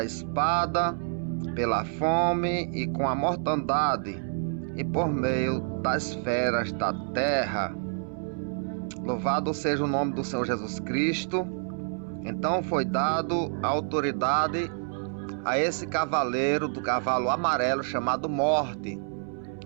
espada, pela fome e com a mortandade, e por meio das feras da terra. Louvado seja o nome do Senhor Jesus Cristo. Então foi dado a autoridade a esse cavaleiro do cavalo amarelo chamado Morte,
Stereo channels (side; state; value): left; silent; 59 dB below the other